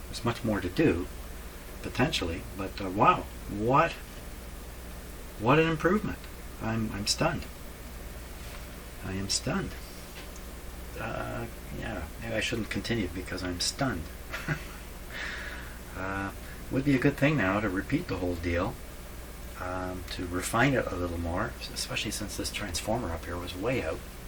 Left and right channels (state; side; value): identical; both; correlation 1.00